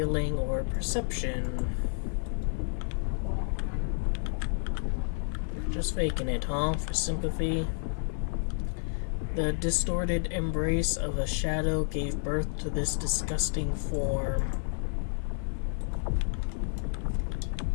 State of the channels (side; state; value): right; silent; digital silence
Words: or perception. Just faking it, huh? For sympathy. The distorted embrace of a shadow gave birth to this disgusting form.